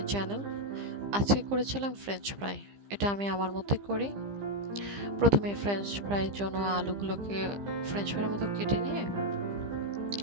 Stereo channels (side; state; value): left; late; 15 ms